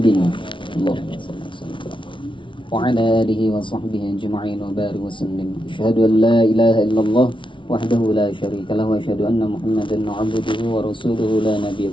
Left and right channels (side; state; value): right; late; 0.24 ms